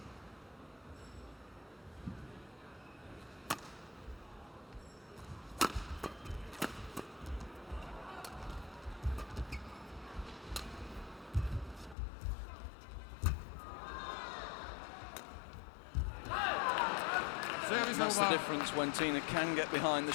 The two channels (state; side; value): drops out; right; at 12.0 s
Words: That's the difference when Tine can get behind the